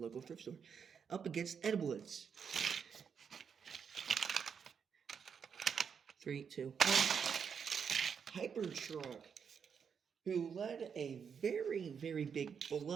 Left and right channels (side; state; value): left; quieter; 6.8 dB